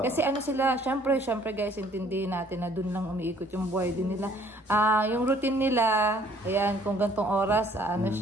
kasi sila, syempre guys, intindihin natin na dun lang umiikot yung buhay din nila. Yung routine nila, ayan, kung gantong oras,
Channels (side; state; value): both; normal; correlation 0.59